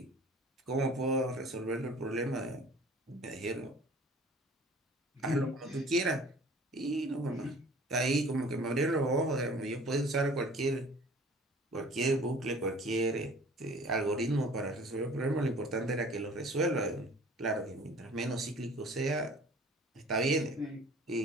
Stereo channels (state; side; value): normal; both; correlation 0.48